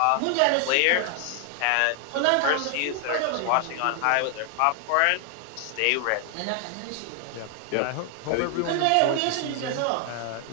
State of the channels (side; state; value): both; different; correlation 0.00